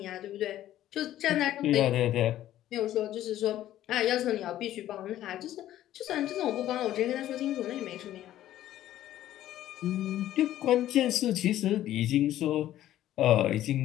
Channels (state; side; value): quieter; right; 13.1 dB